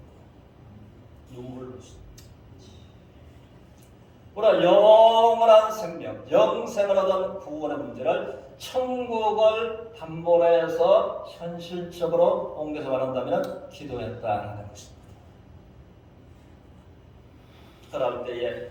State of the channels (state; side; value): identical; both; correlation 1.00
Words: 눈물을 흘렸습니다. 우리가 영원한 생명, 영생을 얻은 구원의 문제를 천국을 담보로 해서 현실적으로 옮겨서 말한다면 기도했다는 것입니다. 그럴 때에